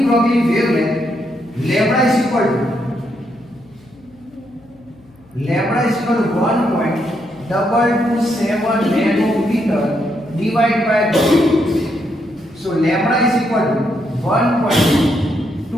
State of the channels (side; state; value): left; noise; hum, 28 dB below the sound